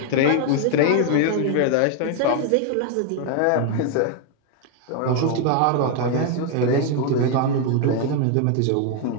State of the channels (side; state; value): both; different; correlation 0.01